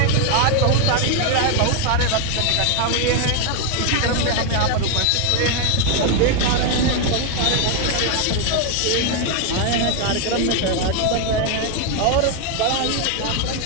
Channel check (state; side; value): different; both; correlation 0.01